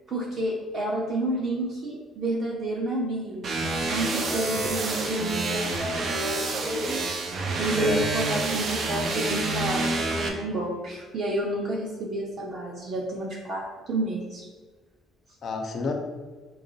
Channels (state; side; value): normal; both; correlation 0.55